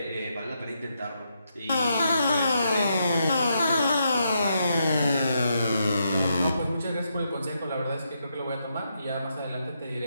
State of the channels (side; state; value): both; inverted; correlation -0.81